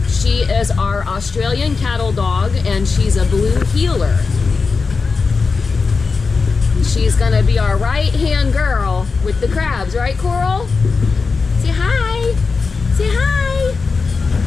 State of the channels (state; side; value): quieter; right; 4.6 dB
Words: She is our Australian cattle dog and she's a blue heeler. She's gonna be our right-hand girl with the crabs, right, Coral? Say hi. Say hi.